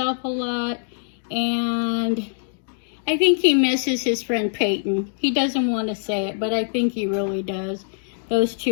a lot. And I think he misses his friend Peyton. He doesn't want to say it, but I think he really does. Those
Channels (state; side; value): silent; right; digital silence